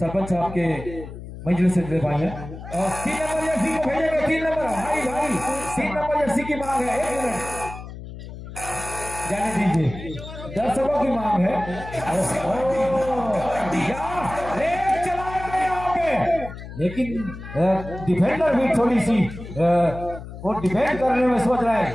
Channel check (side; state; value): left; noise; hum, 12 dB below the sound